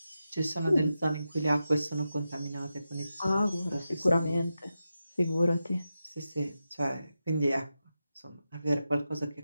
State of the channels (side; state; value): both; inverted; correlation -0.90